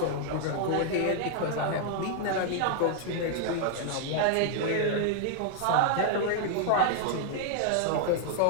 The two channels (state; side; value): different; both; correlation -0.01